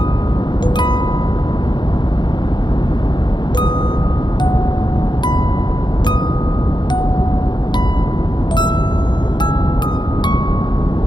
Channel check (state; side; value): late; right; 0.21 ms